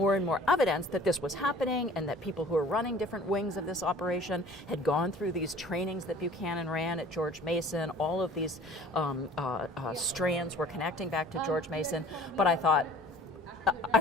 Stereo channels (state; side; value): normal; both; correlation 0.48